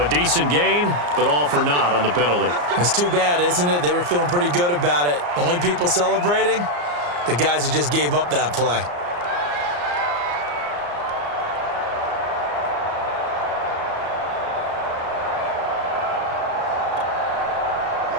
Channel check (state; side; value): late; left; 34 ms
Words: a decent gain, but all for naught on the penalty. It's too bad, isn't it? They were feeling pretty good about it. The only people celebrating, the guys who just gave up that play.